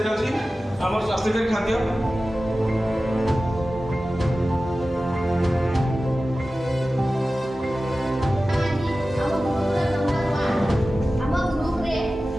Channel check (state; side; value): normal; both; correlation 0.95